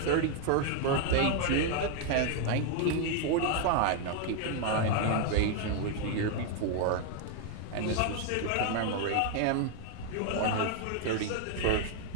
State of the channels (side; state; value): both; different; correlation 0.01